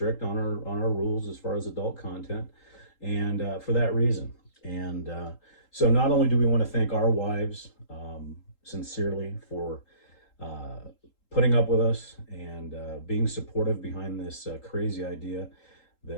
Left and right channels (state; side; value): late; right; 3.8 ms